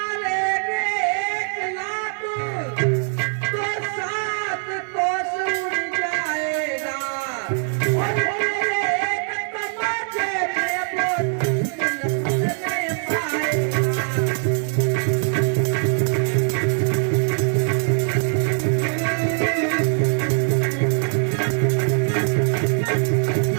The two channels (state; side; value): silent; left; 57 dB below the other